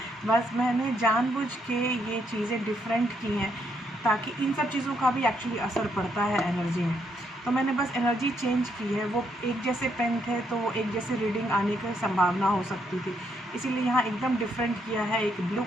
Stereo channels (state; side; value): normal; both; correlation 0.75